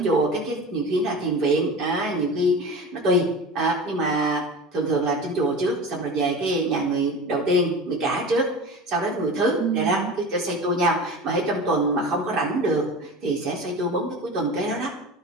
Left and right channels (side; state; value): both; normal; correlation 0.32